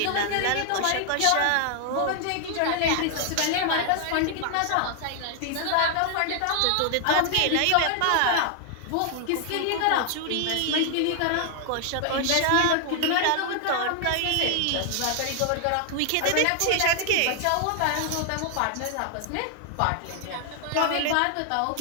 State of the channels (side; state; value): both; different; correlation 0.00